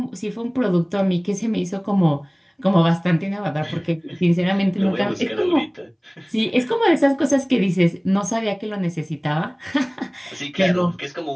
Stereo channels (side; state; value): both; identical; correlation 1.00